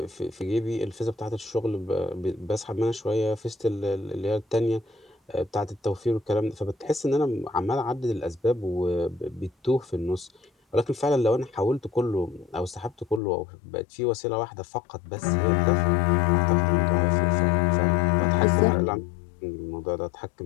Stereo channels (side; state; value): right; drops out; at 13.2 s